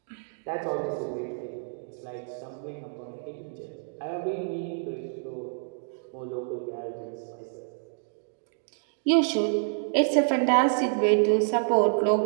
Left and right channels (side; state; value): left; silent; digital silence